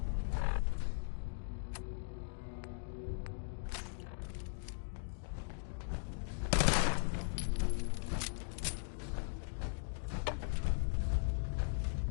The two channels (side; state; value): right; silent; digital silence